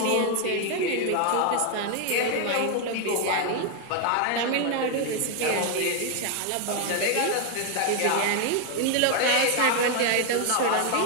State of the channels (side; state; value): both; different; correlation 0.01